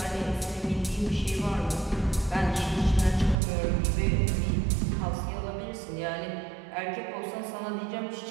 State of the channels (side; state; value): left; drops out; at 3.4 s